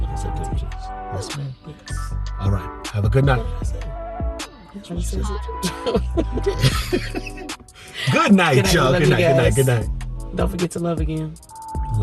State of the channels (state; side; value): identical; both; correlation 1.00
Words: September 6th. Yes, ma'am. Yes. All right. Have a good night. Good night, y'all. Good night. Don't forget to love again.